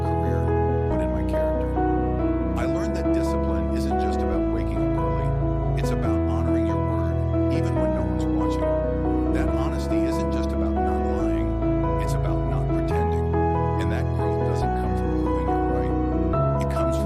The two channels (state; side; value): identical; both; correlation 1.00